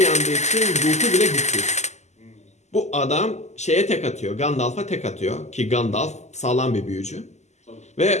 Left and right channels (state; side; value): late; right; 0.33 ms